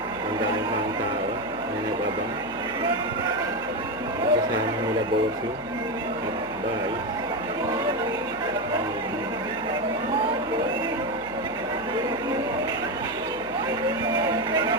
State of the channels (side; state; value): left; noise; hum, 21 dB below the sound